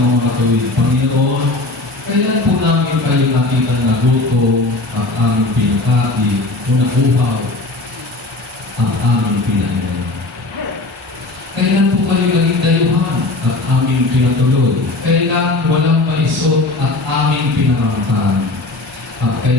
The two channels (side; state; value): right; quieter; 3.0 dB